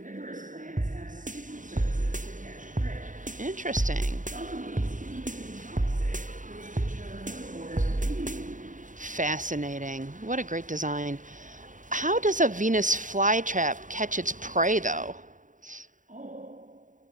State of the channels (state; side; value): late; left; 0.37 ms